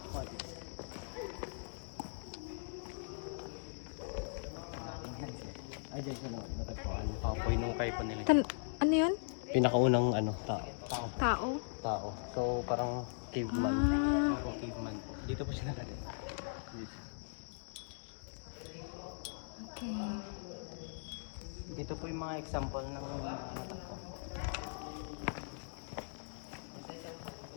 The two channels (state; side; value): silent; right; digital silence